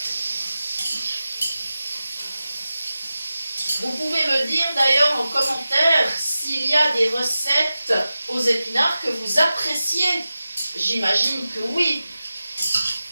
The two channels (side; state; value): both; inverted; correlation -0.94